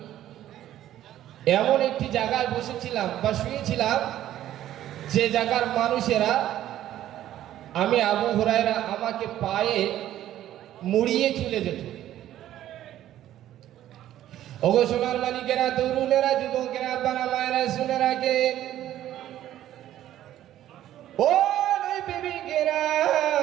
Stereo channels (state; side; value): quieter; left; 12.6 dB